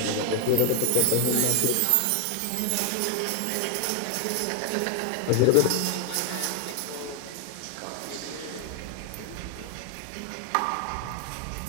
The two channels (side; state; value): both; different; correlation 0.00